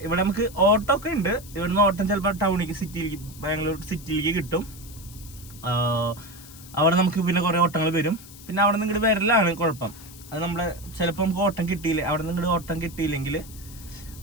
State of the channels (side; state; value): left; noise; hiss, 18 dB below the sound